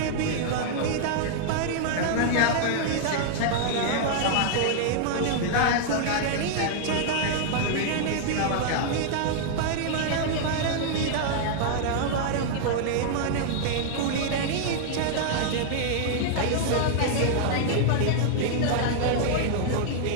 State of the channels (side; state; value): both; different; correlation -0.01